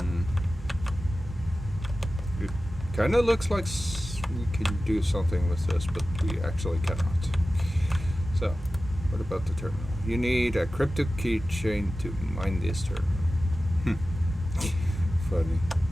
It kind of looks like we can do something with this, but we actually cannot. So, what about the terminal? You need a crypto keychain to mine this terminal. Funny.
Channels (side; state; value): both; normal; correlation 0.95